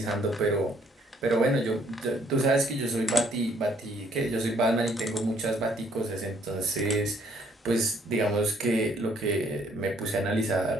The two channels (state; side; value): normal; both; correlation 0.65